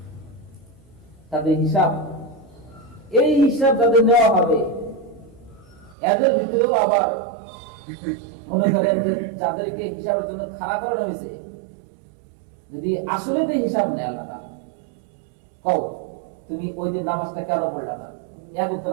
তাদের হিসাব, এই হিসাব যাদের নেওয়া হবে, এদের ভিতরেও আবার মনে করেন যে যাদেরকে হিসাবের জন্য খাড়া করানো হয়েছে, যদি আসলে তো হিসাব নেয় আল্লাহ তাআলা, কও তুমি ওই দিন নামাজটা কেন পড়লা না, এক ওয়াক্ত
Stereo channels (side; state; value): left; drops out; at 6.0 s